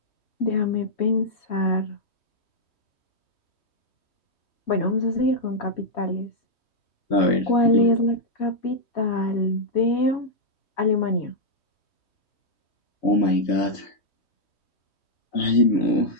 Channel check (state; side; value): late; right; 3.1 ms